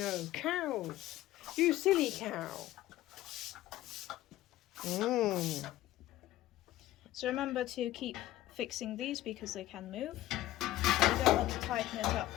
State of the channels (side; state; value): right; quieter; 15.3 dB